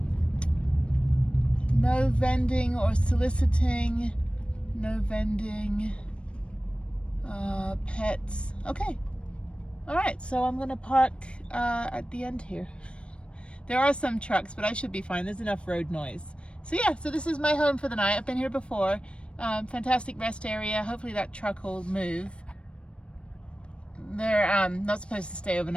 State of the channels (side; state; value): right; late; 0.058 ms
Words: no vending or soliciting, no vending, pets. Okay. All right, so I'm gonna park at the end here. There are some trucks, but I should be fine. There's enough road noise. So yeah, so this is my home for the night. I've been here before. Fantastic rest area. Hopefully that truck will move. They're not supposed to stay